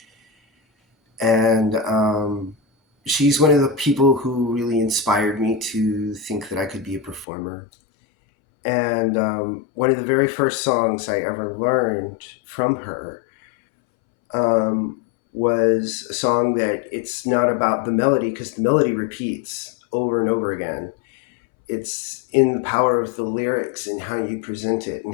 And she's one of the people who really inspired me to think that I could be a performer. And one of the very first songs I ever learned from her was a song that it's not about the melody, because the melody repeats over and over again. It's in the power of the lyrics and how you present it and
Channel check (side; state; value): right; drops out; at 7.2 s